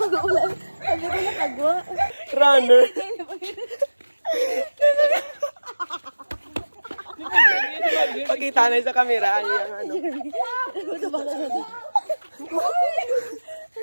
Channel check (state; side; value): inverted; both; correlation -1.00